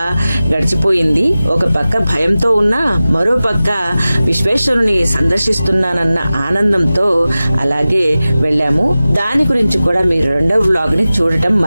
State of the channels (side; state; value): both; inverted; correlation -0.96